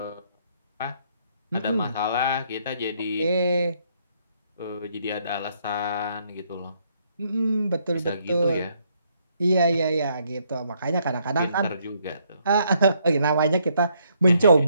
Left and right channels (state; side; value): inverted; both; correlation -0.71